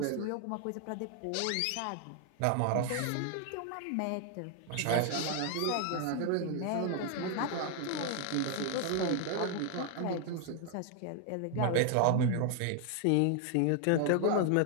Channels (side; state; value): both; different; correlation 0.00